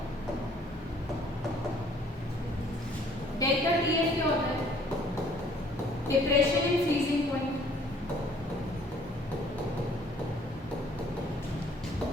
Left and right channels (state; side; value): normal; both; correlation 0.58